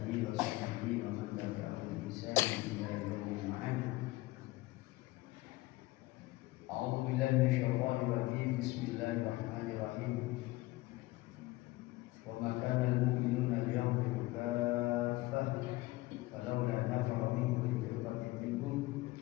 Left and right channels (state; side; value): quieter; right; 19.8 dB